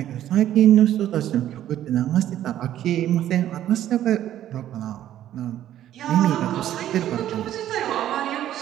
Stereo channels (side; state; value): left; quieter; 12.1 dB